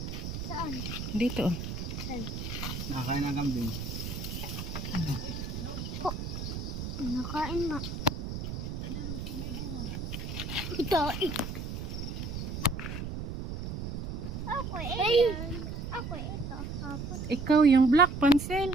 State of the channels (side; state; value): right; noise; rumble, 5 dB below the sound